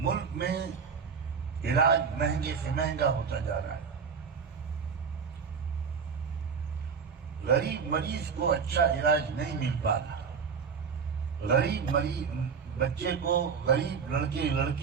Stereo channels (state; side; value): quieter; left; 6.1 dB